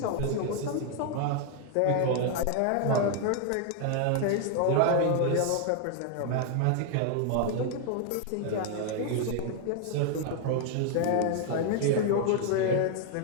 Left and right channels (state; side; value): different; both; correlation 0.00